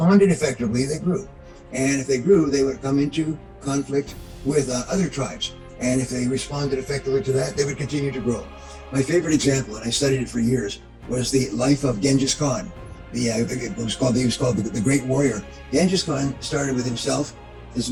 effectively, they grew. And if they grew, they would come into conflict with other tribes. And if they responded effectively to that, they would continue to grow. My favorite example, and I studied it for years, was the life of Genghis Khan. He was called the Great Warrior. Genghis Khan started with himself, his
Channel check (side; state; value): both; identical; correlation 1.00